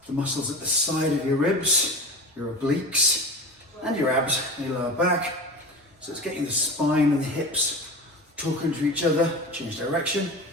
the muscles at the side of your ribs, your obliques, and your abs and your lower back. So it's getting the spine and the hips talking to each other, change direction.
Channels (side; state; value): both; normal; correlation 0.31